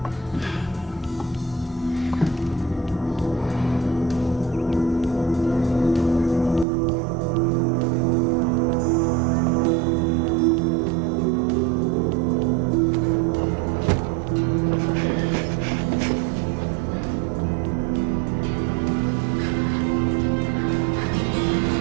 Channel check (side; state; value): left; drops out; at 6.7 s